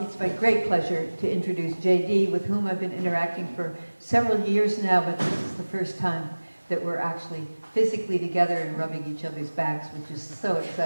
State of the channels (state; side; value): inverted; both; correlation -1.00